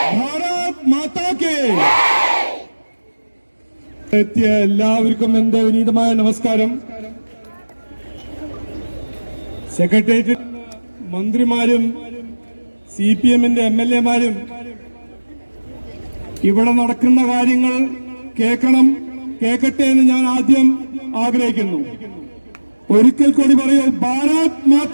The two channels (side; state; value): both; inverted; correlation -1.00